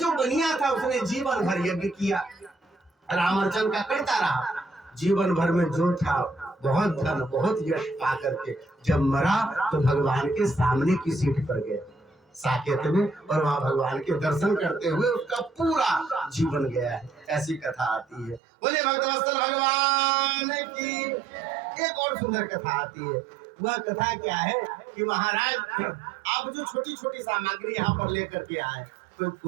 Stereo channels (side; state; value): left; drops out; at 18.4 s